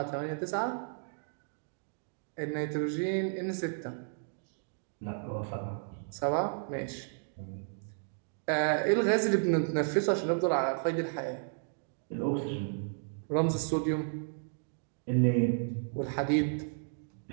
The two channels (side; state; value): left; silent; digital silence